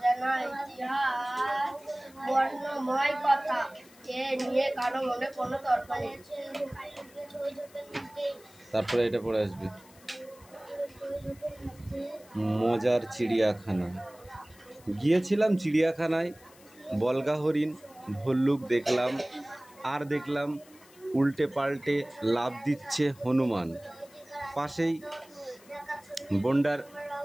ইতিহাস, বর্ণময় কথা। এ নিয়ে কারো মনে কোনো তর্ক নেই। তারপরে এটা পড়ে আসবে, মজার চিড়িয়াখানা। গিয়েছিলাম চিড়িয়াখানায়, বলগা হরিণ ভল্লুক দেখলাম, আর দেখলাম উল্টে পাল্টে লাফ দিচ্ছে হনুমান। পাশেই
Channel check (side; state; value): left; noise; hiss, 25 dB below the sound